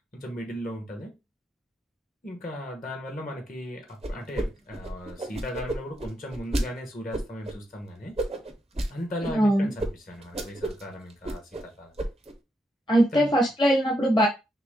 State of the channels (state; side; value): normal; both; correlation 0.81